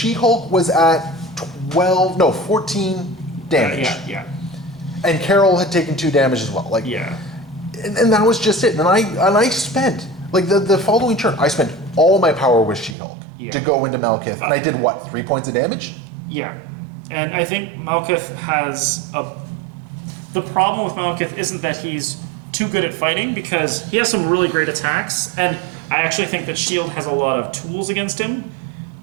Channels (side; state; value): left; drops out; at 13.0 s